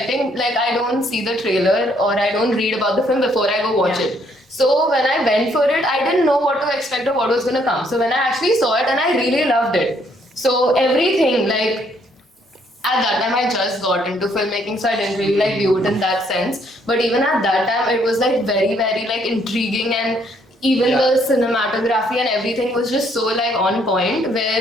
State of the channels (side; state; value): both; normal; correlation 0.68